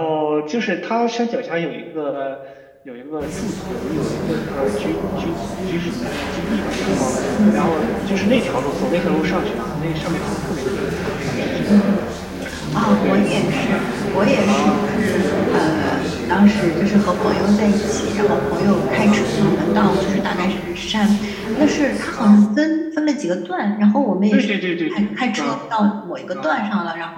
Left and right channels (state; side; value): identical; both; correlation 1.00